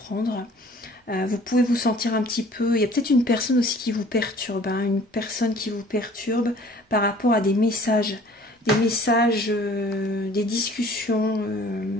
Vous pouvez vous sentir un petit peu... Il y a peut-être une personne aussi qui vous perturbe, hein, une personne qui vous perturbe par rapport à des messages, des discussions.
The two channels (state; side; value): normal; both; correlation 0.51